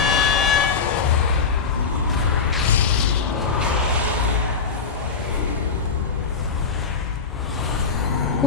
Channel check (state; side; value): quieter; right; 5.3 dB